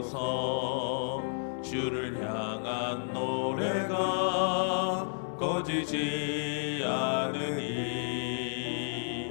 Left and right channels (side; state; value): right; silent; 57 dB below the other